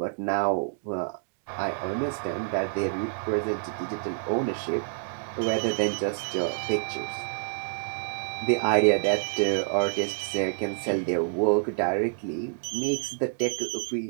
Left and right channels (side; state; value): left; silent; digital silence